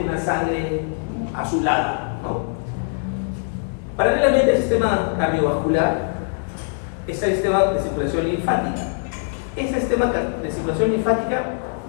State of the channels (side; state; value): right; silent; digital silence